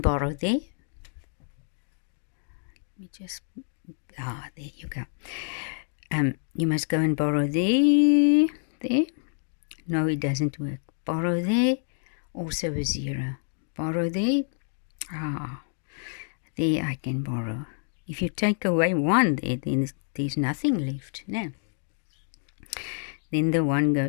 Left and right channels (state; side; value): silent; right; digital silence